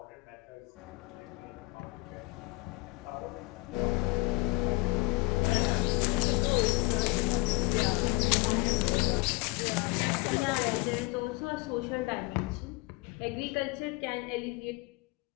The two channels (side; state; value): right; quieter; 22.3 dB